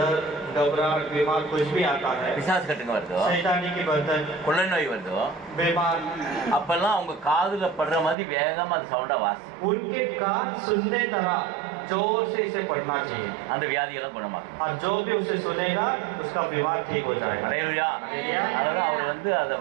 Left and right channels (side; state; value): left; drops out; at 8.2 s